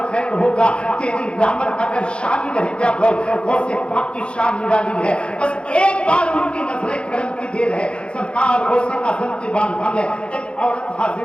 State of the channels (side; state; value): right; late; 0.056 ms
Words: ہوگا، تیری رحمت کا پھر شامل ہے یا غوث. غوث پاک کی شان نرالی ہے. بس ایک بار ان کی نظر کرم کی دیر ہے. سرکار غوث اعظم کی بارگاہ میں ایک عورت